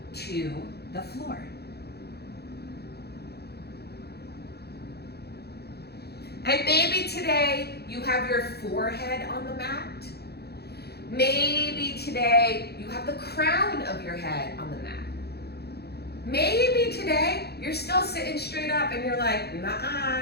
to the floor. And maybe today you have your forehead on the mat. Maybe today you have the crown of your head on the mat. Maybe today you're still sitting straight up and you're like,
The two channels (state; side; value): late; right; 0.47 ms